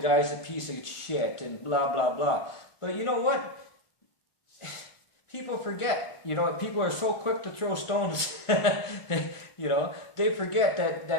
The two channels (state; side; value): late; right; 1.5 ms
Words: a piece of shit and blah, blah, blah. But you know what? People forget. People are so quick to throw stones. They forget